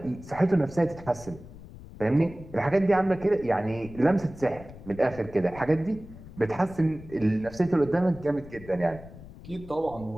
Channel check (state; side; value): noise; left; rumble, 17 dB below the sound